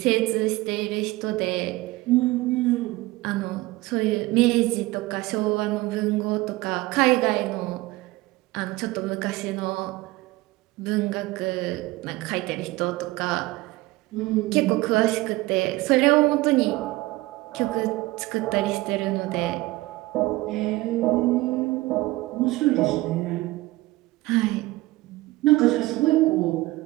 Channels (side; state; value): left; quieter; 19.6 dB